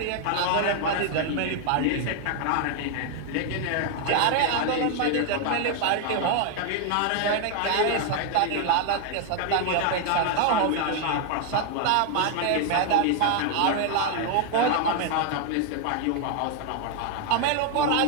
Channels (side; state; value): both; different; correlation 0.00